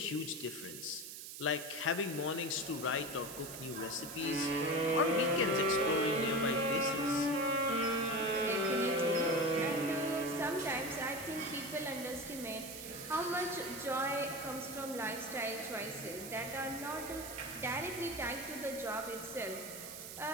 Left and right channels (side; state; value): right; noise; hiss, 10 dB below the sound